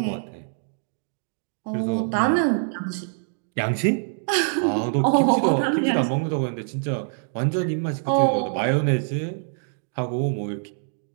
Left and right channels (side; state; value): left; silent; digital silence